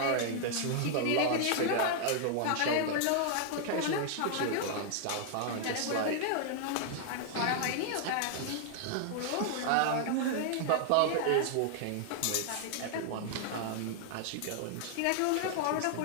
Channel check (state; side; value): different; both; correlation 0.00